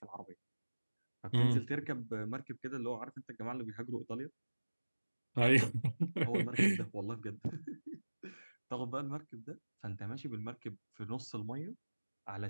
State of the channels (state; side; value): inverted; both; correlation -1.00